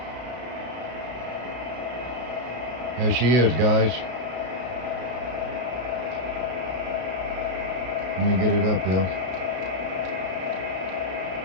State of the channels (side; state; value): left; late; 33 ms